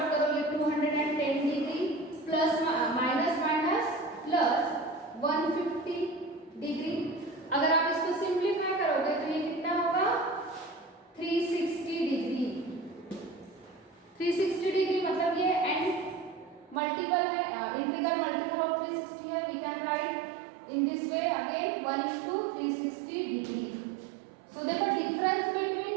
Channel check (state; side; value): drops out; left; at 16.8 s